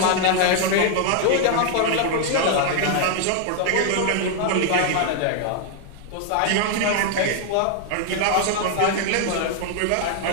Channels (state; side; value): different; both; correlation 0.00